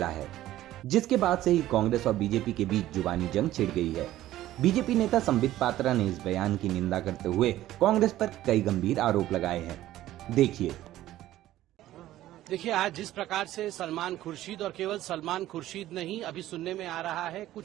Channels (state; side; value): quieter; left; 14.3 dB